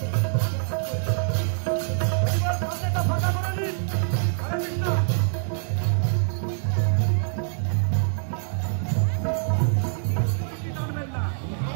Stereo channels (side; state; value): left; silent; digital silence